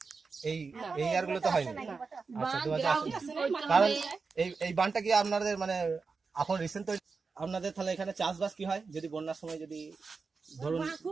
এই ইয়ারগুলো তো হয়নি। আচ্ছা, 2000 কারণ এই বানটা কি আপনাদের মানে এখন রিসেন্ট আপনাদের তাহলে এখানে চাষবাস কি হয় যদি বন্যার সময় যদি ধরুন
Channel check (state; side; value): quieter; left; 4.7 dB